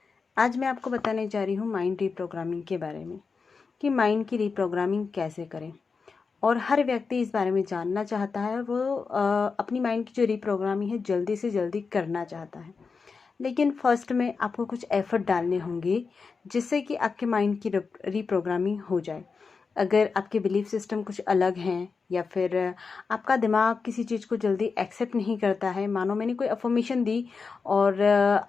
आज मैं आपको बताने जा रही हूँ माइंड रीप्रोग्रामिंग के बारे में कि माइंड की रीप्रोग्रामिंग कैसे करें। और हर व्यक्ति इस बारे में जानना चाहता है और वो अपनी माइंड की जो रीप्रोग्रामिंग है जल्दी से जल्दी करना चाहता है। लेकिन फर्स्ट में आपको कुछ एफर्ट डालने होंगे जिससे कि आपके माइंड की रीप्रोग्रामिंग हो जाए। अगर आपके बिलीफ सिस्टम कुछ अलग हैं या फिर आपका दिमाग किसी चीज़ को जल्दी एक्सेप्ट नहीं करता है, मानो मैंने कोई अफर्मेशन दी और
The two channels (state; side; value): quieter; right; 4.9 dB